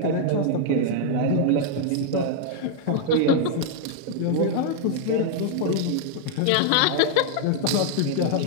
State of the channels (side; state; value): both; different; correlation 0.00